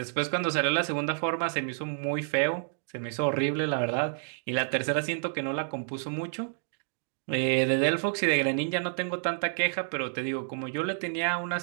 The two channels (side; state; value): left; silent; digital silence